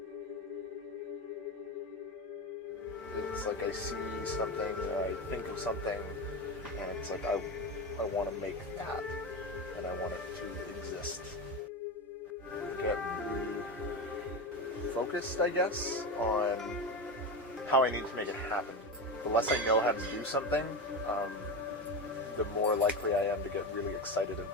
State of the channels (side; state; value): both; normal; correlation 0.19